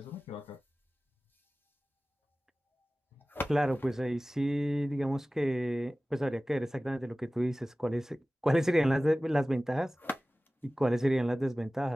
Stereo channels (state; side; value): normal; both; correlation 0.97